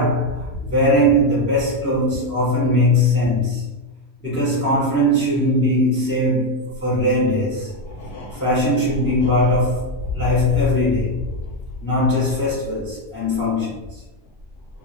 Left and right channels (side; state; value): both; normal; correlation 0.06